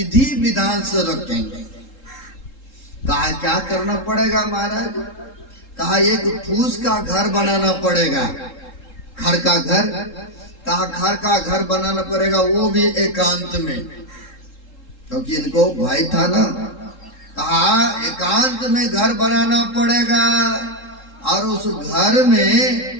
विधान से रखेंगे। कहा क्या करना पड़ेगा महाराज? कहा एक फूस का घर बनाना पड़ेगा, खड़ का घर। कहा खड़ का घर बनाना पड़ेगा, वो भी एकांत में, क्योंकि इनको भाई था ना। कहा एकांत में घर बनाना पड़ेगा, और उस घर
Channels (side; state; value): right; late; 3.7 ms